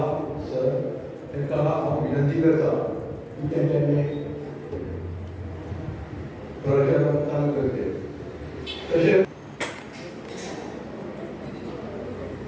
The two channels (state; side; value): identical; both; correlation 1.00